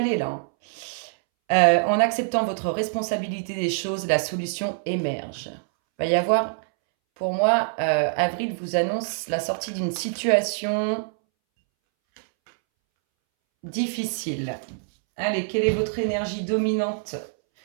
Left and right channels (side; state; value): left; silent; 62 dB below the other